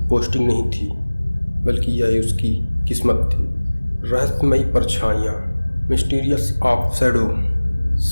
पोस्टिंग नहीं थी, बल्कि यह उसकी किस्मत थी। रहस्यमयी परछाइयाँ, मिस्टीरियस ऑफ शैडो।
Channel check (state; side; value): inverted; both; correlation -1.00